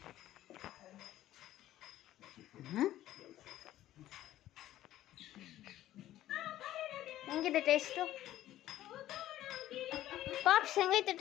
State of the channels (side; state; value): right; quieter; 13.7 dB